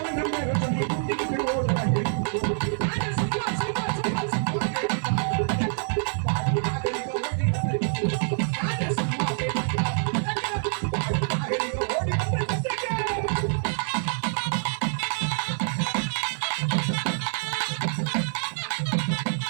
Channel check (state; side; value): silent; left; digital silence